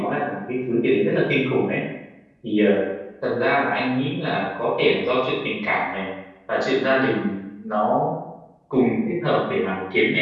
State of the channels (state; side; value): identical; both; correlation 1.00